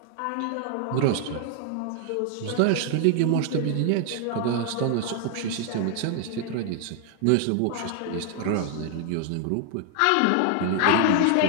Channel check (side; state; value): both; different; correlation 0.00